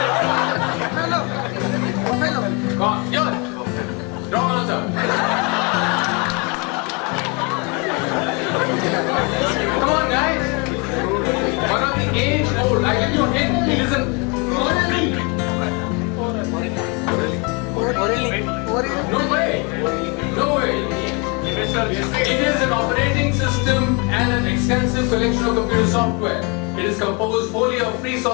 Come on, yours. Wrong answer. Come on, guys. One of the age old. I give you a hint. Listen. No way. No way. It is an operating system and an extensive collection of computer software. It is composed wholly of free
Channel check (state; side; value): quieter; right; 31.5 dB